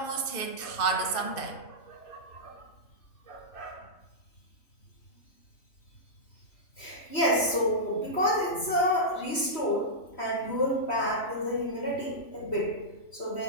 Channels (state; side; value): late; right; 3.1 ms